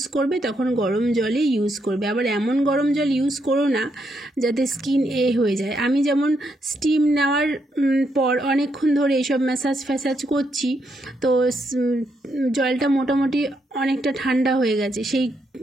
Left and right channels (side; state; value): both; normal; correlation 0.78